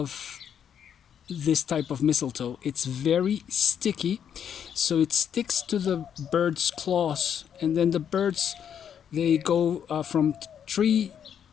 this type of mistletoe. It's very sticky, so it sticks to the bird's claws, and then the birds, they go from tree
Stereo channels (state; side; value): quieter; right; 8.6 dB